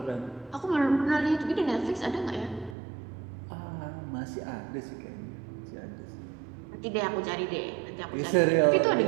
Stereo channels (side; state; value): left; drops out; at 2.8 s